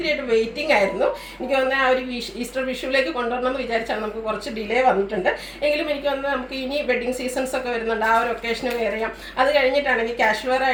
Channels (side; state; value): both; identical; correlation 1.00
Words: വെയിറ്റിംഗ് ആയിരുന്നു. എനിക്ക് തോന്നുന്നത് ആ ഒരു ഈസ്റ്റർ വിഷുവിലേക്ക് കൊണ്ടുവരണമെന്ന് വിചാരിച്ചാൽ നമുക്ക് കുറച്ച് ഡിലേ വന്നിട്ടുണ്ട്. എങ്കിലും എനിക്ക് തോന്നുന്നത് നമുക്ക് ഇനി വെഡ്ഡിങ് സീസൺസ് ഒക്കെ വരുന്നുണ്ട്. ആ ഒരു ഒക്കേഷന് വെയർ ചെയ്യാം. അത് കഴിഞ്ഞിട്ടാണെങ്കിൽ ക്യാഷ് വെയർ